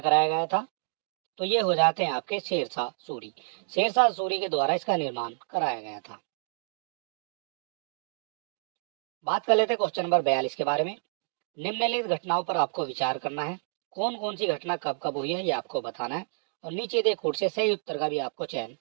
गया था? तो ये हो जाते हैं आपके शेरशाह सूरी। शेरशाह सूरी के द्वारा इसका निर्माण कराया गया था। बात कर लेते हैं क्वेश्चन नंबर 42 के बारे में। निम्नलिखित घटनाओं पर आपको विचार करना है। कौन कौन सी घटना कब कब हुई है, ये आपको बताना है, और नीचे दे कोड से सही उत्तर का भी आपको चयन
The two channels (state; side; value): silent; left; digital silence